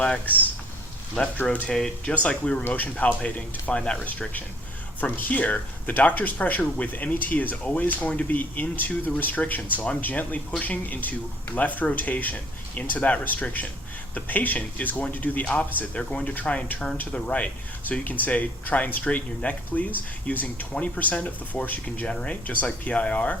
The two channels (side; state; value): both; normal; correlation 0.58